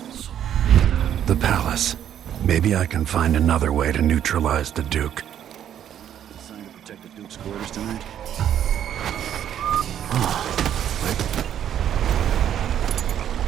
The palace. Maybe I can find another way to neutralize the Duke. Assigned to protect the Duke's quarters tonight?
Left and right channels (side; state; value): left; quieter; 10.1 dB